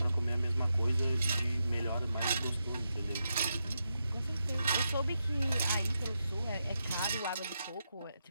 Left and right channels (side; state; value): both; inverted; correlation -0.85